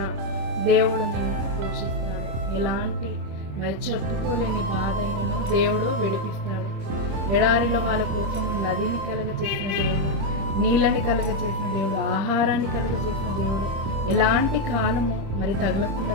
దేవుడు నిన్ను పోషిస్తాడు. ఎలాంటి మరి చెప్పుకోలేని బాధ అయినను దేవుడు విడిపిస్తాడు. ఎడారిలో వాళ్ళ కోసం నదిని కలుగ చేసిన దేవుడు, నీళ్ళని కలుగ చేసిన దేవుడు, ఆహారాన్ని కలుగ చేసిన దేవుడు, ఎలాంటి కాలము మరి తగలకుండా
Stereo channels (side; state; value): left; late; 26 ms